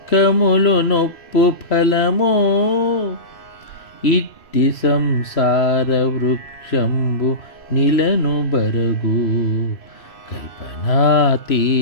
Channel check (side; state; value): right; late; 3.0 ms